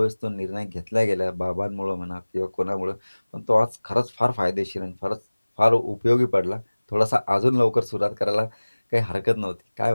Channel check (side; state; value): both; inverted; correlation -1.00